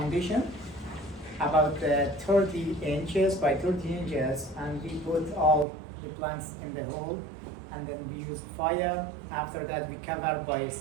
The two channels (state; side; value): drops out; left; at 5.7 s